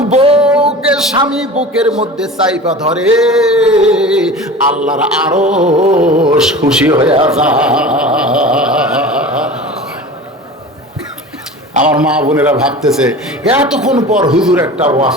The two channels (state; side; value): normal; both; correlation 0.36